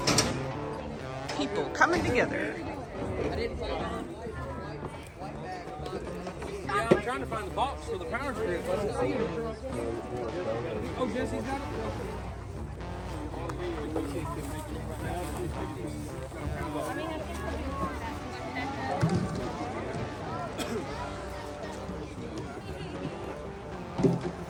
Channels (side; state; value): both; identical; correlation 1.00